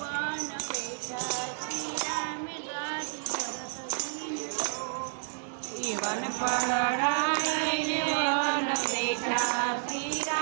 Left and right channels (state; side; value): silent; left; 58 dB below the other